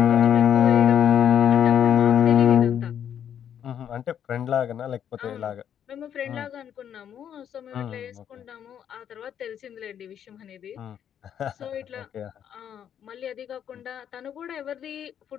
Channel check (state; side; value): quieter; right; 9.2 dB